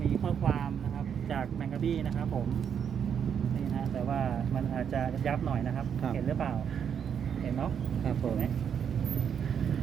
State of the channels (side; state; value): left; quieter; 7.9 dB